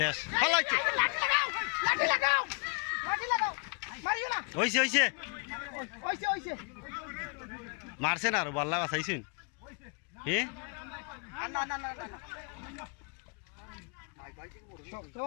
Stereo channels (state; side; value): quieter; right; 36.6 dB